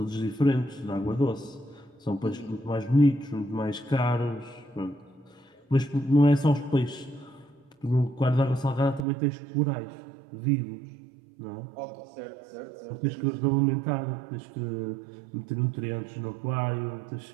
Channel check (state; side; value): drops out; left; at 9.1 s